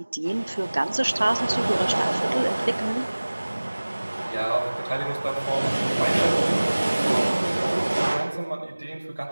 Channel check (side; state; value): both; inverted; correlation -1.00